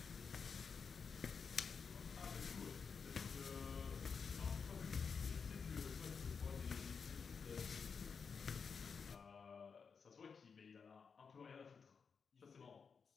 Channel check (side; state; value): right; quieter; 5.8 dB